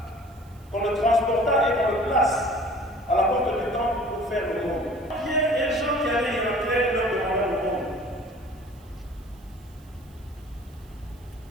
qu'on le transporta et qu'on le place à la porte du temple pour faire le monde. Pierre et Jean qui allaient y entrer leur demandaient le monde.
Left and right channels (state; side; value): noise; right; hiss, 29 dB below the sound